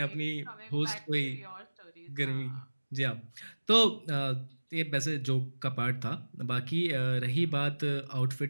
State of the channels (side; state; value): both; inverted; correlation -1.00